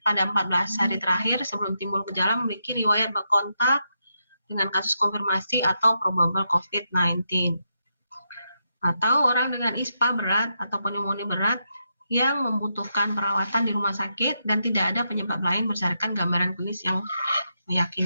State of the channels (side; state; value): both; inverted; correlation -0.83